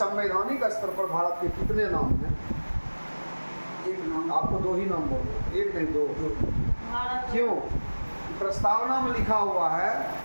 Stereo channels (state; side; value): inverted; both; correlation -1.00